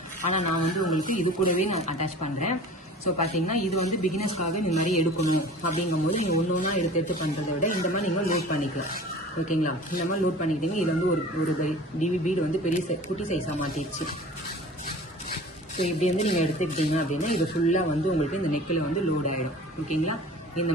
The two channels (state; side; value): normal; both; correlation 0.42